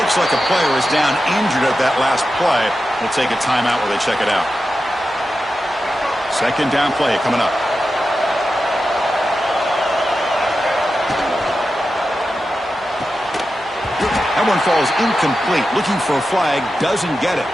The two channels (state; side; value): normal; both; correlation 0.91